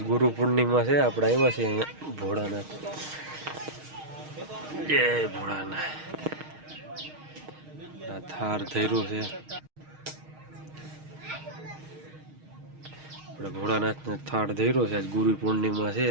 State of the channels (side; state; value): left; late; 6.4 ms